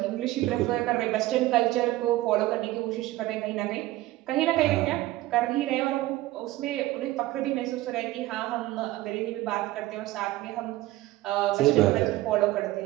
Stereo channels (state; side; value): quieter; left; 16.9 dB